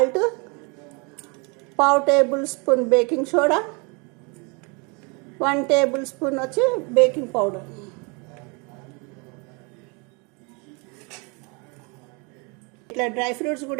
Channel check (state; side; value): quieter; left; 31.7 dB